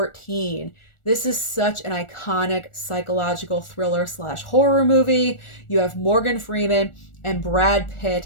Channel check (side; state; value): right; late; 1.4 ms